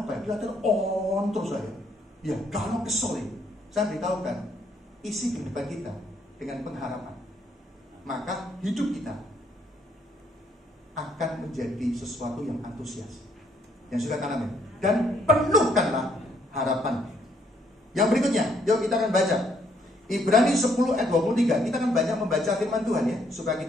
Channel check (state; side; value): normal; both; correlation 0.69